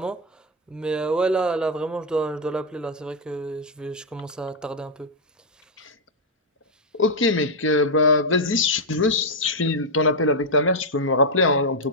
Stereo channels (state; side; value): normal; both; correlation -0.02